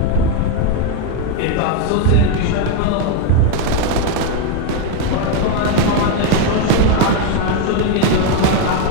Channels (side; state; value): both; different; correlation 0.02